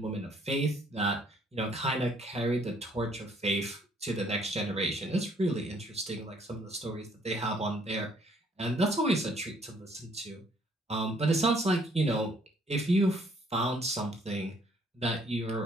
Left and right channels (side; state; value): both; normal; correlation 0.64